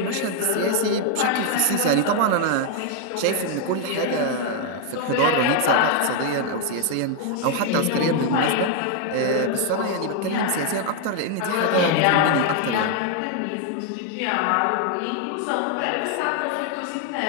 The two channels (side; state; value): both; different; correlation 0.01